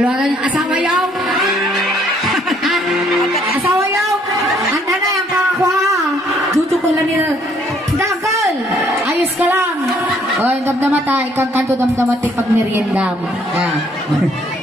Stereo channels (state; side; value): normal; both; correlation 0.65